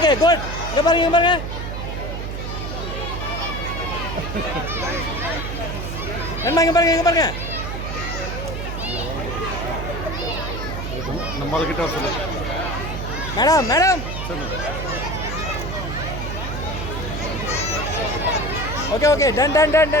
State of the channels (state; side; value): noise; right; hum, 5 dB below the sound